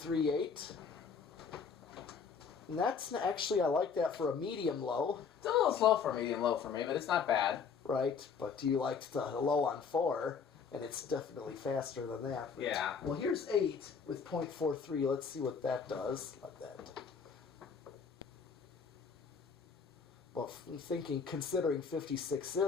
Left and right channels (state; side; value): quieter; right; 6.0 dB